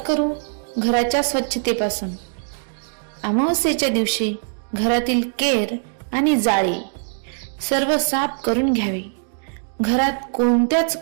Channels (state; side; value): silent; left; digital silence